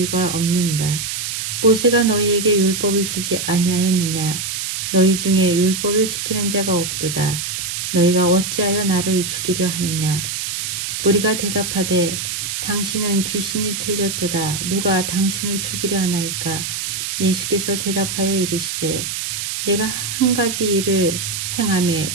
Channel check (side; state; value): right; noise; hiss, 4 dB below the sound